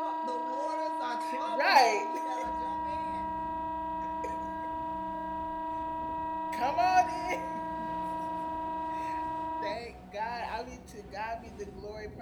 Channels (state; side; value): identical; both; correlation 1.00